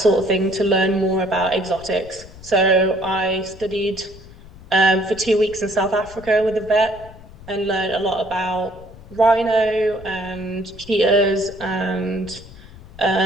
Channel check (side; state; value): left; noise; rumble, 19 dB below the sound